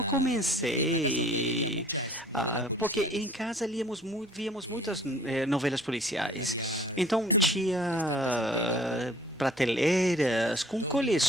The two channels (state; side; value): normal; both; correlation 0.53